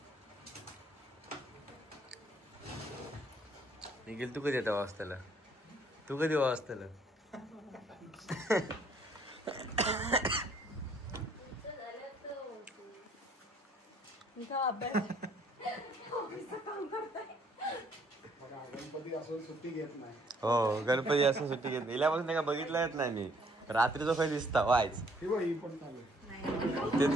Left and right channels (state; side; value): normal; both; correlation 0.64